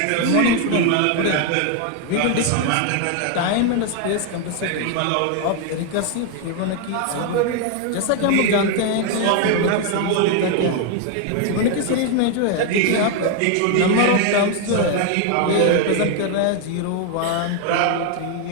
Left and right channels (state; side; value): different; both; correlation 0.01